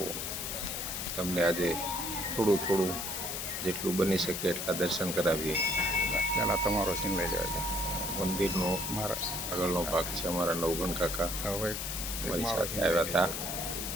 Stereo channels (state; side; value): noise; left; hiss, 4 dB below the sound